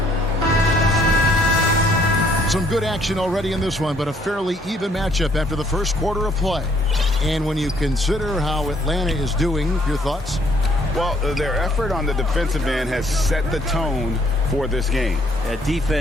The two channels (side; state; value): both; normal; correlation 0.65